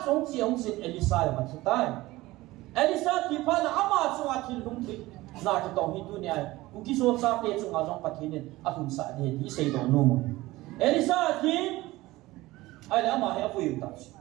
中只红是艾丽莎嘛是带，艾丽莎提怕那阿妈中啊听红提，那就当去多年，我记说啥别中啊中白天呢，啊红啥的你谁都弄嘛，艾丽莎听，哎，阿妈还要不用担心，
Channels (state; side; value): quieter; left; 18.7 dB